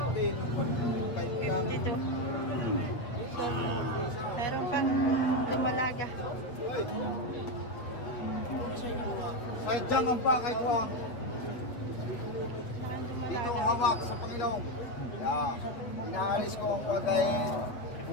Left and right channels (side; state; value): right; late; 8.2 ms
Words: 52. Sold out. Meron pang dumalaga. Sadyang ang pakay ko ang Meron dito dumalaga. hawak sa Panginoon. Yeah. Inaalis ko ang pagay